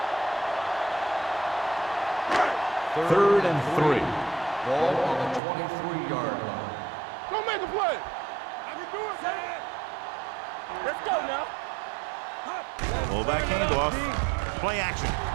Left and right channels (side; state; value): left; drops out; at 5.4 s